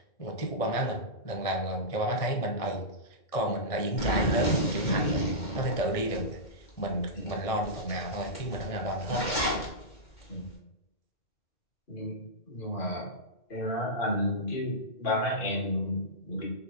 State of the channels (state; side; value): late; right; 2.1 ms